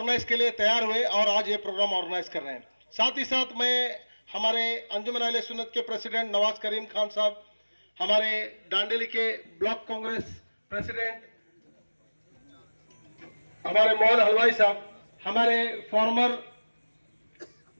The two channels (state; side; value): inverted; both; correlation -1.00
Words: के लिए तैयार हुए और आज ये प्रोग्राम ऑर्गेनाइज कर रहे हैं। साथ ही साथ मैं हमारे अंजुमन अहले सुन्नत के प्रेसिडेंट नवाज करीम खान साहब, हमारे डांडेली के ब्लॉक कांग्रेस प्रेसिडेंट हमारे मोहन हलवाई साहब, हमारे former